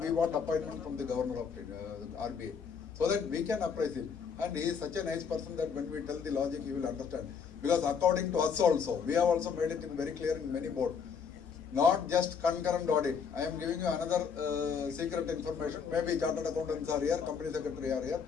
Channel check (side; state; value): right; quieter; 6.4 dB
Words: want appointment from the governor of RBI. So that we can appraise him. And he is such a nice person that when we tell the logic, he will understand. Because according to us also, we have also made it very clear in many boards. Not just concurrent audit. I am giving you another secret information. Maybe chartered accountants are here, company secretary are here.